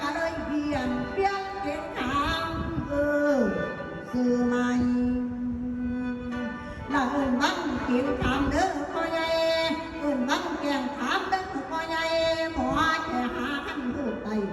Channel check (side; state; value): both; identical; correlation 1.00